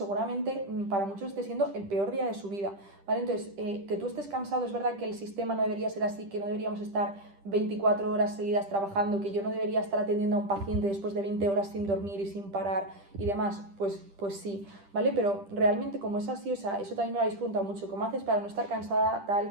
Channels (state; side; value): late; left; 10 ms